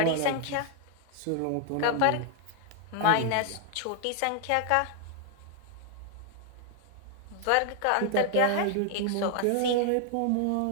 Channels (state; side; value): different; both; correlation 0.00